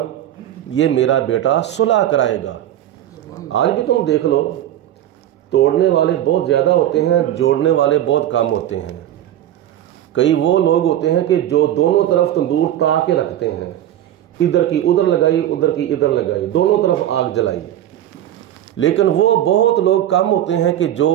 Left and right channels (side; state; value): left; quieter; 12.1 dB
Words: یہ میرا بیٹا صلح کرائے گا۔ آج بھی تم دیکھ لو، توڑنے والے بہت زیادہ ہوتے ہیں، جوڑنے والے بہت کم ہوتے ہیں۔ کئی وہ لوگ ہوتے ہیں کہ جو دونوں طرف تندور تا کے رکھتے ہیں، ادھر کی ادھر لگائی، ادھر کی ادھر لگائی، دونوں طرف آگ جلائی۔ لیکن وہ بہت لوگ کم ہوتے ہیں کہ جو